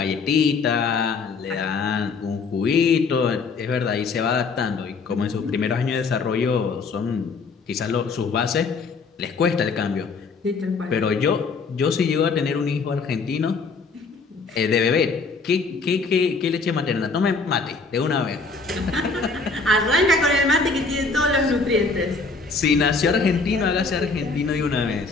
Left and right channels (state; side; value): quieter; right; 4.4 dB